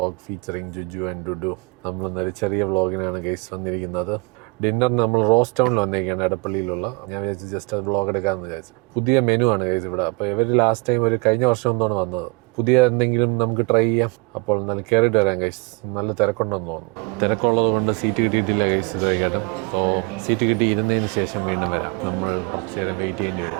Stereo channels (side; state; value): left; quieter; 29.4 dB